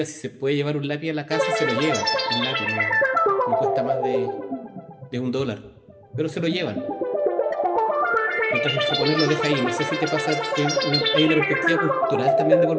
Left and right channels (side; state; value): both; identical; correlation 1.00